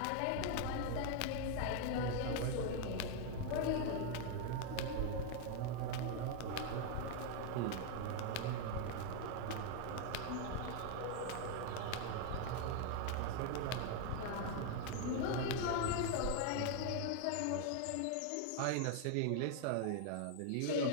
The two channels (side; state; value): both; different; correlation 0.01